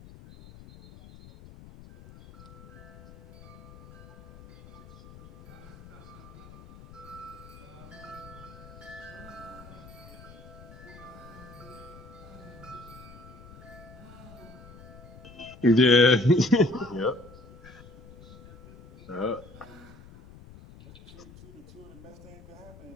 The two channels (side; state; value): left; noise; rumble, 18 dB below the sound